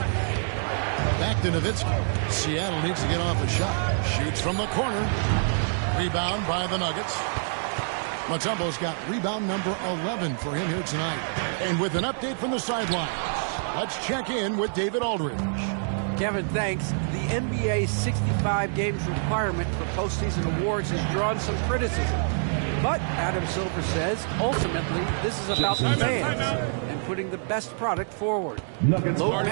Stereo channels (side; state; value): left; silent; digital silence